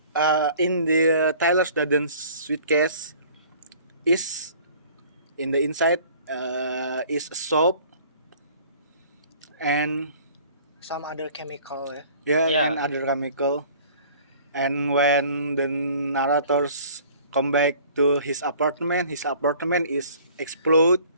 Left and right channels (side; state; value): both; inverted; correlation -0.51